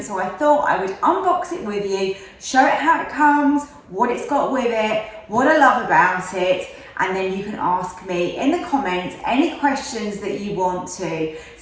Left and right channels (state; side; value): identical; both; correlation 1.00